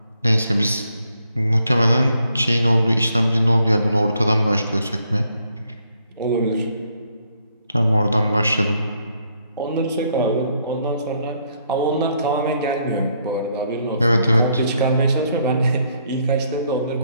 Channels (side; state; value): both; inverted; correlation -0.72